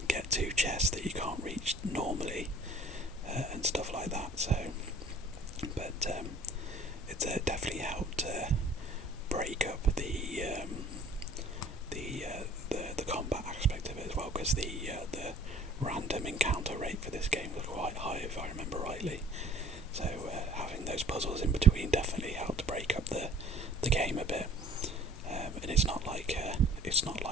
get to chests that you can't reach normally, and stuff like that. So, but it's definitely helped break up the combat aspect of it as well, because the random encounter rate for this game was quite high, if I remember rightly. So having those puzzles in between definitely helped break up the game a bit. And it's not like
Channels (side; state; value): both; normal; correlation 0.51